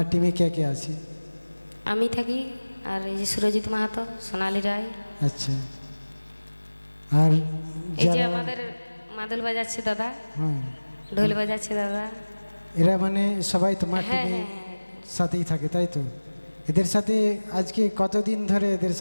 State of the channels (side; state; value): both; inverted; correlation -1.00